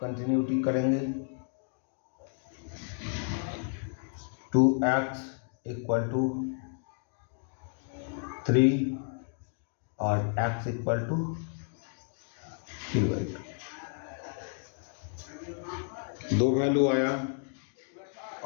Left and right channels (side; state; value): right; silent; 57 dB below the other